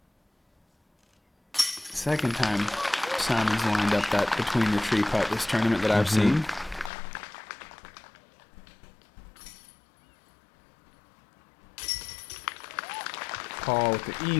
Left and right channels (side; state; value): right; drops out; at 6.9 s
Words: Second time Simon's lined up that between the tree putt this tournament that I've seen. Paul with the